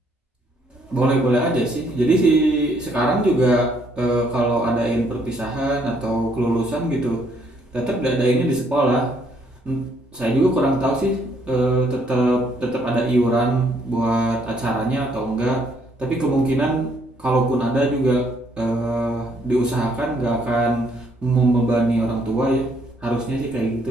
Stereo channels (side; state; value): both; normal; correlation 0.68